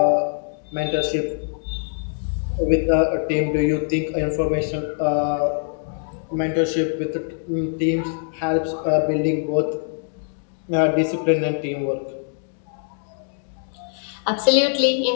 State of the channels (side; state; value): right; silent; digital silence